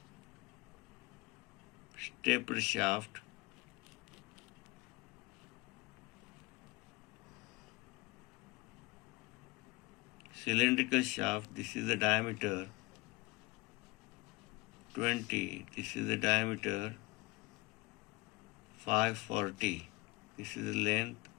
tapered shaft, cylindrical shaft, this is the diameter 20, this is the diameter 540, this is the length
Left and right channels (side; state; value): right; quieter; 23.8 dB